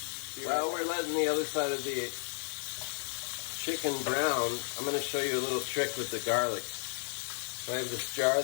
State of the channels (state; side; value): silent; right; 56 dB below the other